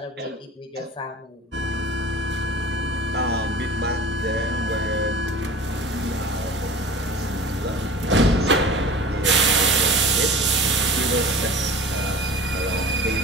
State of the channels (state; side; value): normal; both; correlation 0.39